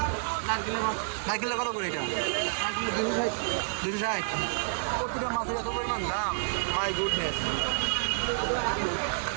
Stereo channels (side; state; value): left; silent; 58 dB below the other